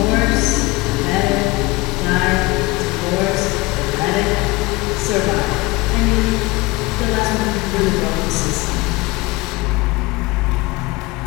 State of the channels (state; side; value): quieter; right; 22.5 dB